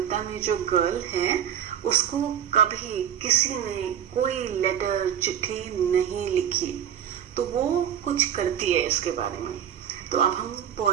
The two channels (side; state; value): left; quieter; 9.5 dB